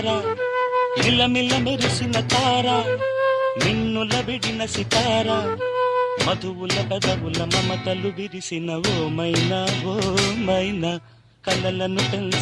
మిలమిల మెరిసిన తార నిన్నుల విడిన సితార, మధువుల పెదవుల మమతలు విరిసిన ఓ మైనా ఓ మైనా, కలలను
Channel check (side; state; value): both; identical; correlation 1.00